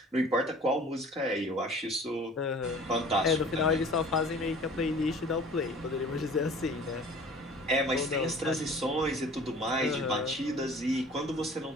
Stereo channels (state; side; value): normal; both; correlation 0.47